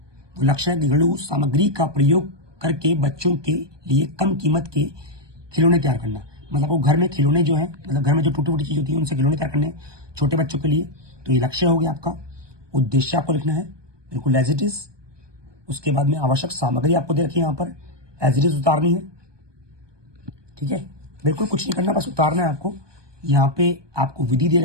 वो लक्ष्य है घरेलू सामग्री का प्रयोग करके बच्चों के लिए कम कीमत के खिलौने तैयार करना। मतलब वो घर में खिलौने जो है, मतलब घर में जो टूटी फूटी चीज होती है उनसे खिलौने तैयार करने छोटे बच्चों के लिए। तो ये लक्ष्य हो गया आपका। उद्देश्य आपको लिखना है, बिल्कुल एज इट इज। उसके बाद में आवश्यक सामग्री आपको दे रखी है यहाँ पर, एज इट इज उतारनी है, ठीक है। बिल्कुल कुछ नहीं करना, बस उतारना है आपको। यहाँ पे आपको विधि दे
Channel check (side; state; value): left; late; 1.2 ms